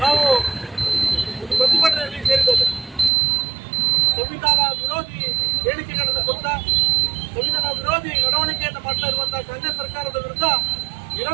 ನಾವು ಪ್ರತಿಭಟನೆಯಲ್ಲಿ ಸೇರಿದ್ದೇವೆ. ಸಂವಿಧಾನ ವಿರೋಧಿ ಹೇಳಿಕೆಗಳನ್ನು ಕೊಟ್ಟ, ಸಂವಿಧಾನ ವಿರೋಧಿ ನಡವಳಿಕೆಯನ್ನು ಮಾಡ್ತಾ ಇರುವಂತಹ ಕಾಂಗ್ರೆಸ್ ಸರ್ಕಾರದ ವಿರುದ್ಧ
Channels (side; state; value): left; drops out; at 3.1 s